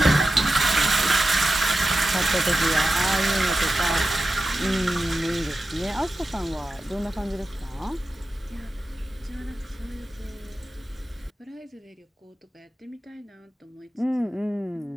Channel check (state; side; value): normal; both; correlation 0.92